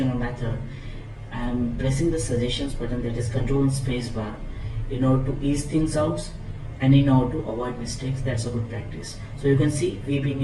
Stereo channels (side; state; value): both; identical; correlation 1.00